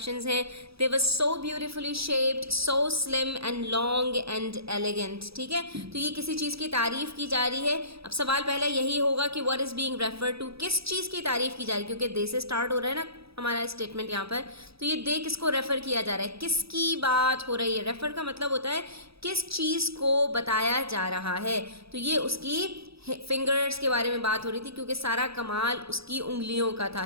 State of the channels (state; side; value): late; left; 0.77 ms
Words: हैं। They was so beautifully shaped, so slim and long and elegant. ठीक है, तो ये किसी चीज़ की तारीफ़ की जा रही है। अब सवाल पहला यही होगा कि what is being refer to, किस चीज़ की तारीफ़ की जा रही है, क्योंकि दे से स्टार्ट हो रहा है ना हमारा स्टेटमेंट यहाँ पर। तो ये दे किसको रेफ़र किया जा रहा है, किसकी बात हो रही है। रेफ़र का मतलब होता है किस चीज़ को बताया जा रहा है। तो ये उसकी फिंगर्स के बारे में बात हो रही थी, क्योंकि सारा कमाल उसकी उंगलियों का था,